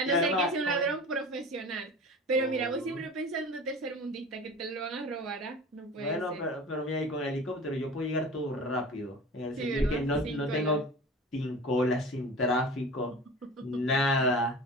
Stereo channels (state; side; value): normal; both; correlation 0.37